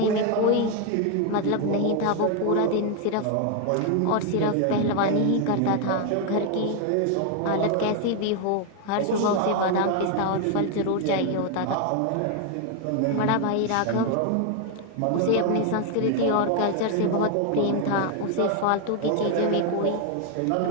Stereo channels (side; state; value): both; different; correlation 0.01